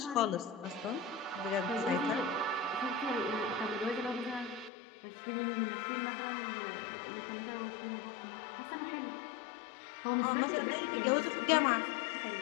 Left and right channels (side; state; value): right; drops out; at 4.7 s